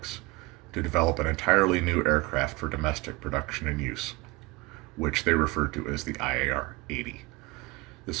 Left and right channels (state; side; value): quieter; left; 23.2 dB